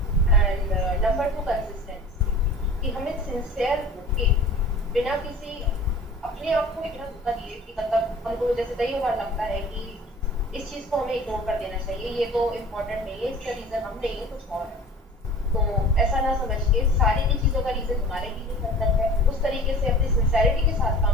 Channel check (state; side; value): normal; both; correlation 0.42